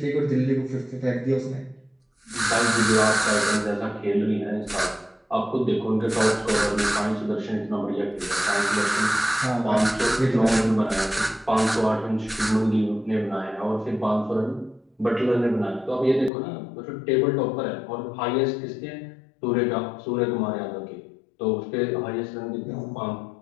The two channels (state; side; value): drops out; right; at 16.3 s